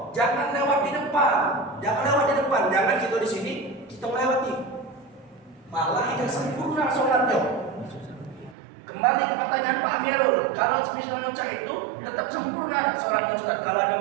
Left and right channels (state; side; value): drops out; left; at 8.6 s